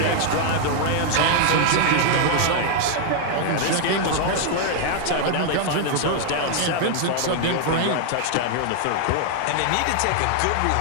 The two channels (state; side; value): different; both; correlation 0.00